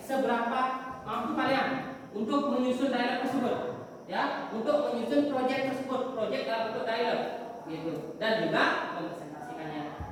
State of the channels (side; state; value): both; identical; correlation 1.00